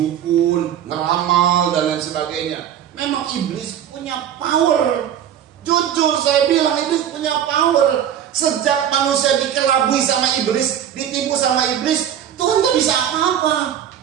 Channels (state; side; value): quieter; left; 9.9 dB